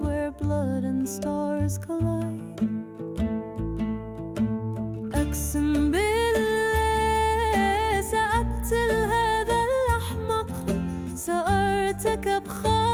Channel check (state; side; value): identical; both; correlation 1.00